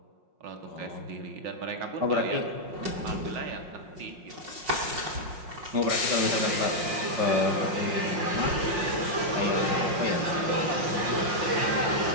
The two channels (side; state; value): left; late; 5.6 ms